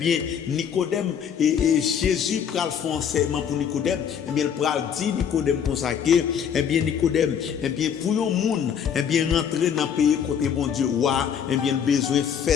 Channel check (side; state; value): right; quieter; 8.0 dB